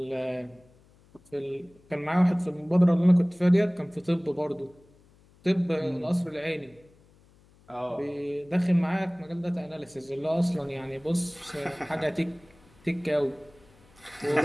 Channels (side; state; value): left; noise; hum, 29 dB below the sound